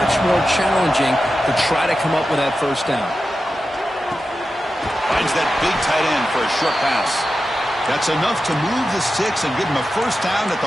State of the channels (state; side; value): normal; both; correlation 0.92